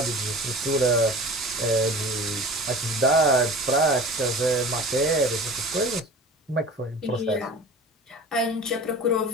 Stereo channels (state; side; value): normal; both; correlation 0.38